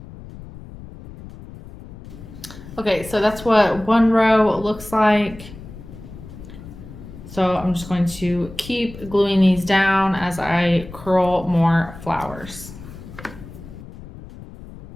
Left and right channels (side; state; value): left; noise; rumble, 15 dB below the sound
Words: Okay, so that's what one row looks like. So I'm just going to keep gluing these down as I curl more flowers.